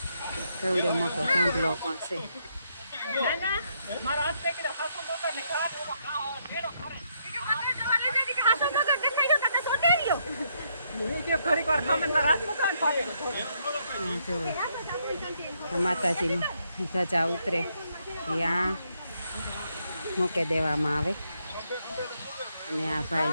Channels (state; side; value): inverted; both; correlation -0.76